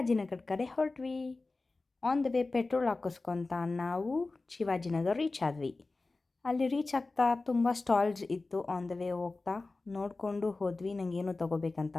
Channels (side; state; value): right; quieter; 3.5 dB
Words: ಕಡೆ ಹೊರಟ್ವಿ. ಆನ್ ದ ವೇ ಪೆಟ್ರೋಲ್ ಹಾಕಿಸ್ಕೊತ ನಾವು ಶಿವಾಜಿನಗರ ರೀಚ್ ಆದ್ವಿ. ಅಲ್ಲಿ ರೀಚ್ ಆಗ್ತಾ ತುಂಬ ಸ್ಟಾಲ್ಸ್ ಇತ್ತು. ಆನ್ ದ ವೇ ಹೋಗ್ತಾ ನೋಡಿಕೊಂಡು ಹೋದ್ವಿ. ನನಗೇನು ತೊಗೋಬೇಕಂತ